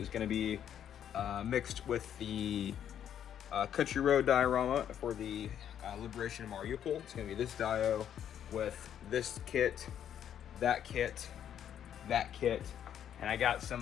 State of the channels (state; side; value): quieter; right; 9.6 dB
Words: going to be mixed with the Country Road diorama for the Liberation of Mariupol. It's going to be this dio with this kit, that kit, that kit. And I got